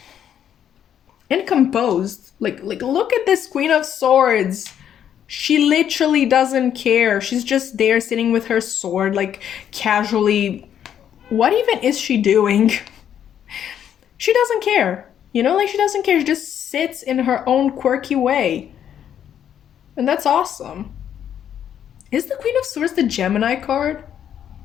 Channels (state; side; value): quieter; right; 9.5 dB